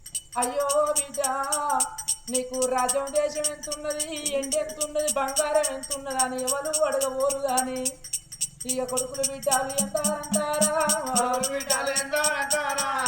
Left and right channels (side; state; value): both; identical; correlation 1.00